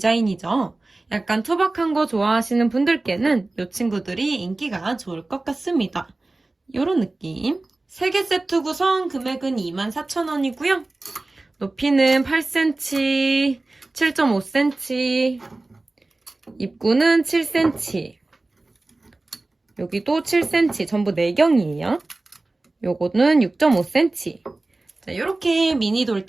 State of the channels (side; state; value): left; quieter; 3.1 dB